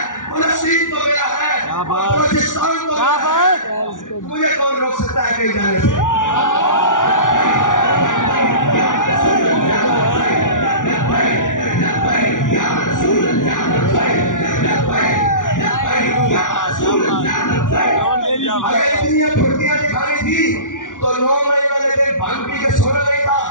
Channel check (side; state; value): right; late; 0.88 ms